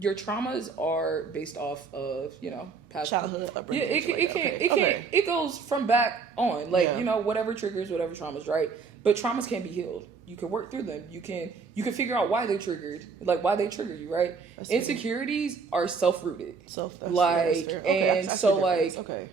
traumas are based off of, past childhood upbringing. Yeah, it goes from back on, like, whatever triggers, whatever traumas, right? But traumas can be healed. You can work through them. You can figure out why they're triggered, like why they trigger you, right? Insecurities are self-rooted.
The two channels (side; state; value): left; quieter; 5.2 dB